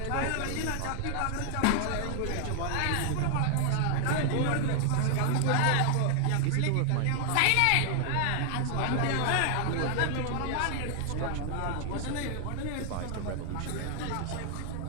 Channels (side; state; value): both; different; correlation 0.00